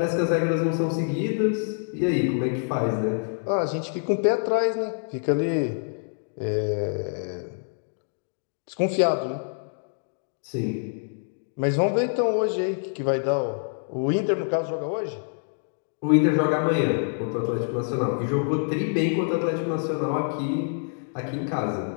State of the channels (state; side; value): silent; right; digital silence